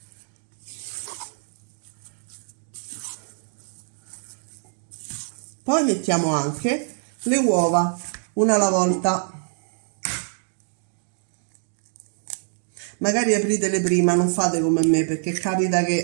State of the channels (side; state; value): left; silent; digital silence